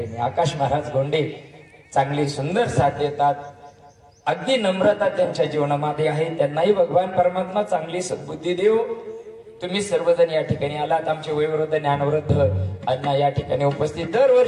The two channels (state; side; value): identical; both; correlation 1.00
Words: आहे आकाश महाराज गोंडे चांगली सुंदर साथ देतात. अगदी नम्रता त्यांच्या जीवनामध्ये आहे. त्यांनाही भगवान परमात्मा चांगली सद्बुद्धी देव. तुम्ही सर्वजण या ठिकाणी आलात. आमचे वयोवृद्ध ज्ञानवृद्ध अण्णा या ठिकाणी उपस्थित